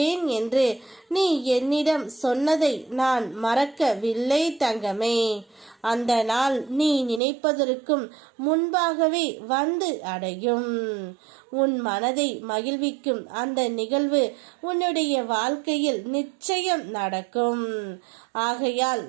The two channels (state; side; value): drops out; left; at 7.2 s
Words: என்று நீ என்னிடம் சொன்னதை நான் மறக்கவில்லை தங்கமே. அந்த நாள் நீ நினைப்பதற்கும் முன்பாகவே வந்து அடையும். உன் மனதை மகிழ்விக்கும் அந்த நிகழ்வு உன்னுடைய வாழ்க்கையில் நிச்சயம் நடக்கும். ஆகையால்